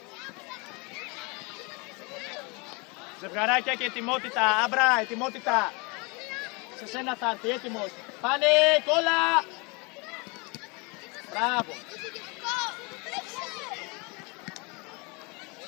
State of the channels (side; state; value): right; quieter; 29.4 dB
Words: Ζευγαράκια και ετοιμότητα, Άμπρα, ετοιμότητα. Σε σένα θα έρθει, έτοιμος. Πάνε, κόλλα. Μπράβο.